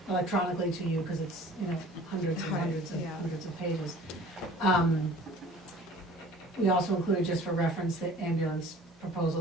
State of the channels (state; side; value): normal; both; correlation 0.47